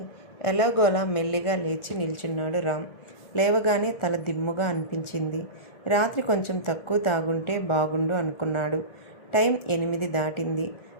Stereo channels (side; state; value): right; late; 1.4 ms